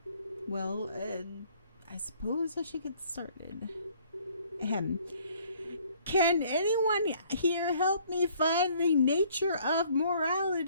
Well, I suppose I should get started. Ahem. Can anyone here help me find the nature of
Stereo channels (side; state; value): both; inverted; correlation -0.60